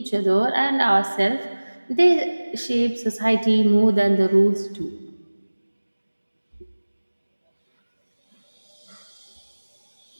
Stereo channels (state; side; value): inverted; both; correlation -1.00